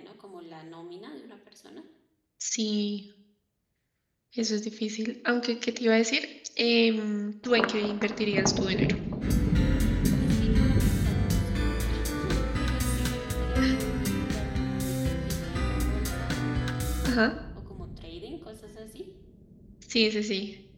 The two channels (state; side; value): identical; both; correlation 1.00